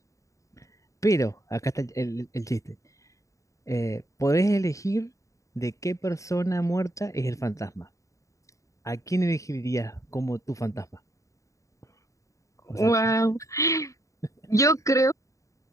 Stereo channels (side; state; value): right; late; 0.16 ms